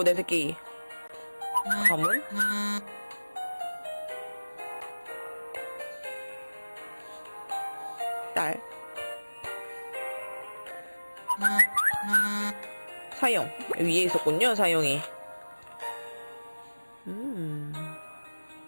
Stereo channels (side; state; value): both; inverted; correlation -1.00